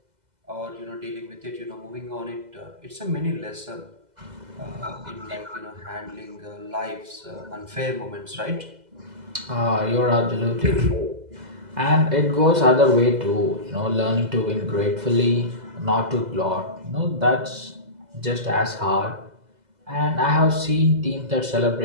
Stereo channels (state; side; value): late; left; 2.0 ms